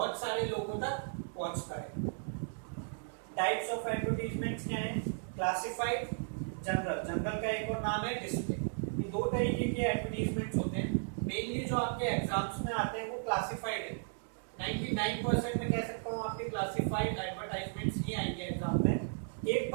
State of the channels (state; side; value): silent; left; 54 dB below the other